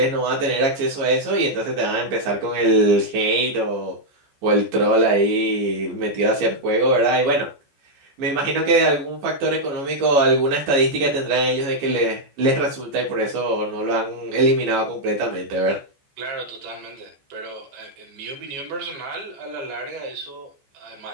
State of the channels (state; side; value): late; left; 14 ms